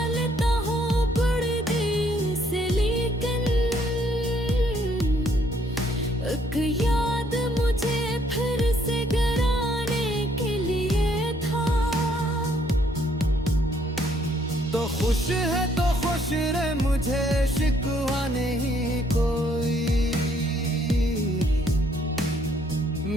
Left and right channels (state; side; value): normal; both; correlation 0.67